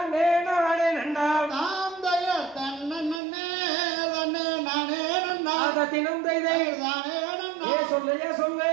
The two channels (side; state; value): left; drops out; at 3.2 s